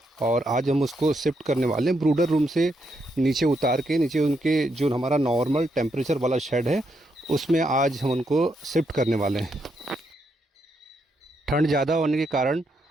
और आज हम उसको शिफ्ट करने वाले हैं ब्रूडर रूम से नीचे उतार के। नीचे उनके जो हमारा नॉर्मल टेम्परेचर वाला शेड है उसमें आज हम उनको शिफ्ट करने वाले हैं। ठंड ज़्यादा होने के कारण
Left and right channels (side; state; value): both; normal; correlation 0.79